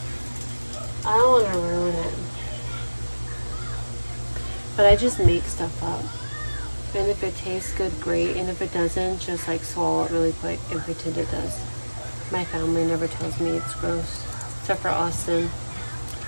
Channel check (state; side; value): inverted; both; correlation -1.00